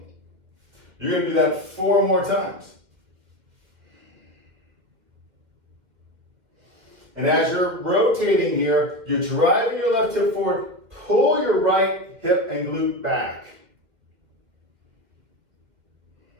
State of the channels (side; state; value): left; late; 2.0 ms